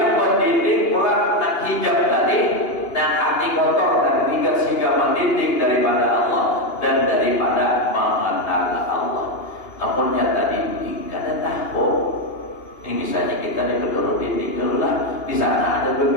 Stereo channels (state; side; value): late; right; 2.8 ms